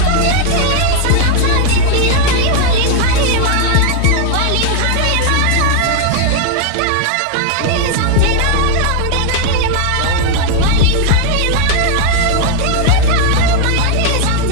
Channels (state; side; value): different; both; correlation 0.00